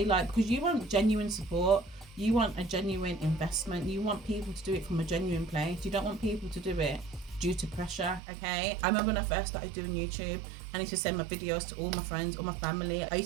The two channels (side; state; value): left; drops out; at 8.2 s